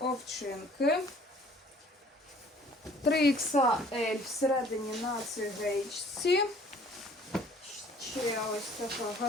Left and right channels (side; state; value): both; normal; correlation 0.54